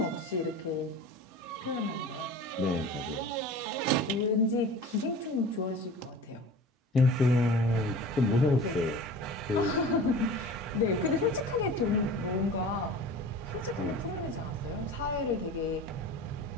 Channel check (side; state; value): both; normal; correlation 0.38